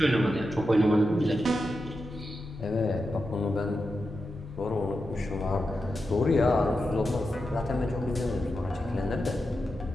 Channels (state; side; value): normal; both; correlation 0.89